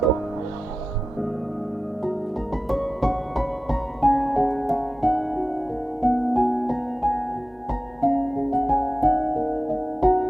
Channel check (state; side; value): normal; both; correlation 0.95